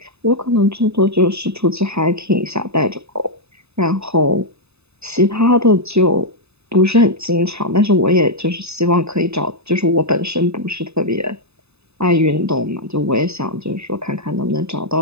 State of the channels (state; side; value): late; left; 0.80 ms